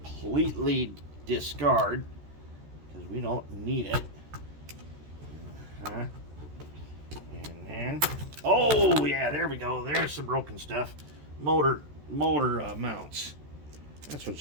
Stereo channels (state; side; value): late; left; 13 ms